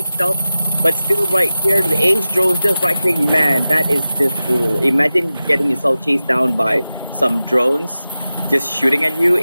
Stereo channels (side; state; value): both; inverted; correlation -0.94